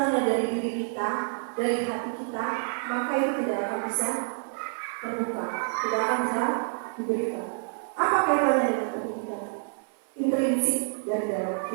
dari diri kita, dari hati kita, maka itu tidak akan bisa terbuka, tidak akan bisa diberikan. Apa kaitannya dengan pendidikan? Intrinsik dan dalam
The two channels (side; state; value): left; silent; digital silence